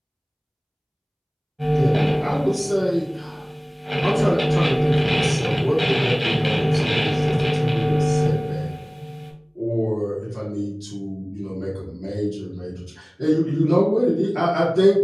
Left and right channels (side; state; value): both; identical; correlation 1.00